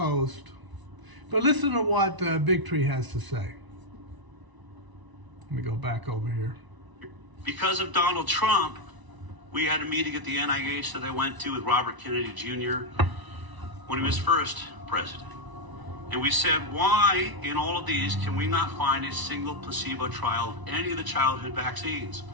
But listen to what Bigtree has to say. Let me go back over here. Because of Donald Trump, we had a meeting at the NIH that I went to with Robert Kennedy Jr. when he was first president. And we said, why in all of these can we not find a single placebo trial of any of the childhood vaccines?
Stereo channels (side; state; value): left; late; 1.0 ms